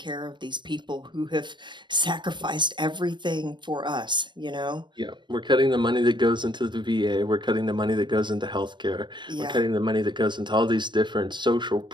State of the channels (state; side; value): late; left; 0.22 ms